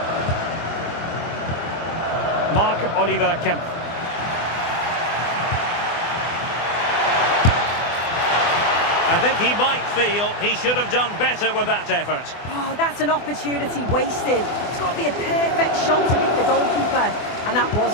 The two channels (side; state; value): right; late; 24 ms